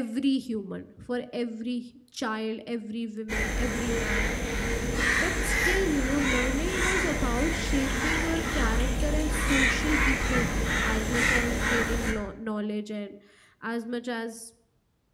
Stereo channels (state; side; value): identical; both; correlation 1.00